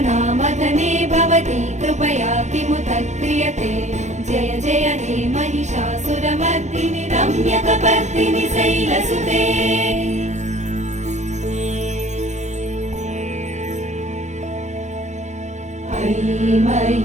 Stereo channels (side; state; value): left; late; 0.34 ms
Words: భవతి కృపయా కిముత క్రియతే జయ జయ హే మహిషాసురమర్దిని రమ్యకపర్దిని శైలసుతే మయి